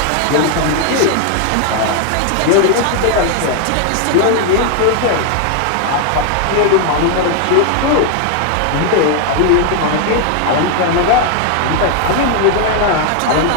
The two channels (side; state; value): both; different; correlation 0.00